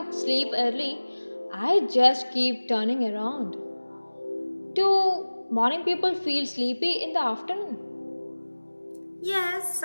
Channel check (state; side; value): inverted; both; correlation -1.00